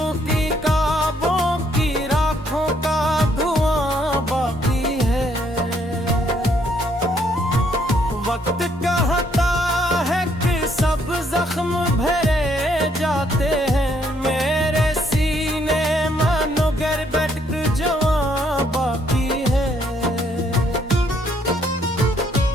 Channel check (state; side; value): normal; both; correlation 0.69